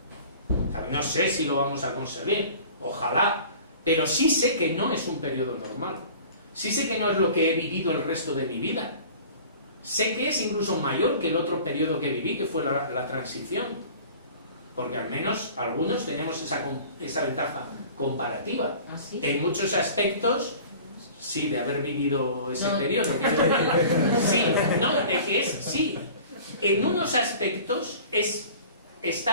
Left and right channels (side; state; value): both; inverted; correlation -0.43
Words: No sé si lo vamos a conseguir, ojalá, pero sí sé que no es un periodo normal. Sí sé que no es lo que he vivido el resto de mi vida. Sé que es incluso mayor que el otro periodo que viví, que fue la transición. Porque al menos algunos tenemos esa ventaja comparativa. ¿Ah, sí? En muchos aspectos, sí, de haber vivido ese periodo. Sí, no, de que es, sí. En unos aspectos